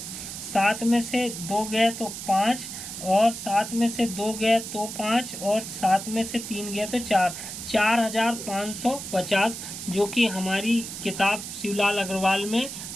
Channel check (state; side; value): noise; right; hiss, 8 dB below the sound